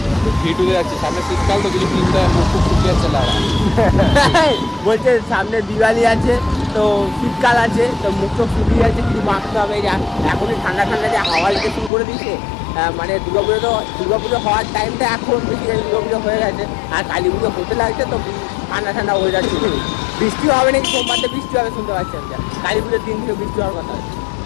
ভিটুতে যাচ্ছি, সামনে শীতকাল তো কিছু কিনতে মুখ শুকিয়ে যাচ্ছে লাড়া। বলছে সামনে দিওয়ালি আছে, তো শীতকাল আছে, তো মুখ তো শুকিয়ে যাচ্ছে, কিছু মাখতে হবে। এখনই ঠান্ডা ঠান্ডা যে হাওয়া দিতে শুরু করে দিচ্ছে, মানে দুর্গাপুজো হওয়ার টাইমটা এখন বেসিক্যালি দুর্গাপুজো হয়ে গেছে, আর কালী পুজো হতে লাগছে, তো ঠান্ডা ঠান্ডা হয়ে যাচ্ছে। বৃষ্টি হবে নাকি, সোমবারটা বৃষ্টি হবে শুনতে পাচ্ছি আমরা, কালী পুজোর দিন থেকে বৃষ্টি হওয়ার কথা।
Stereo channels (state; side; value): drops out; right; at 11.9 s